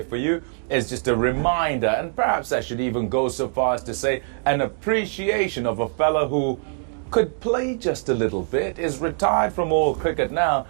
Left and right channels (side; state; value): left; silent; digital silence